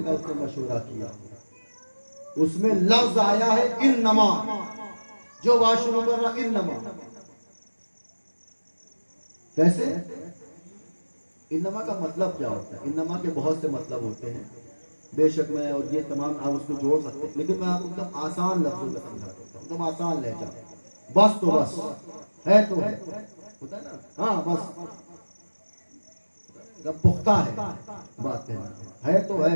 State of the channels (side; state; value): both; inverted; correlation -1.00